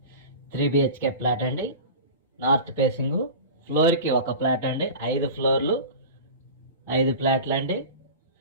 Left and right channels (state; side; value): inverted; both; correlation -0.32